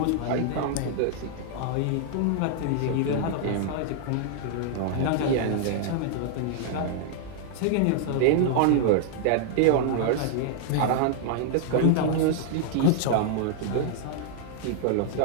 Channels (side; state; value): both; different; correlation -0.01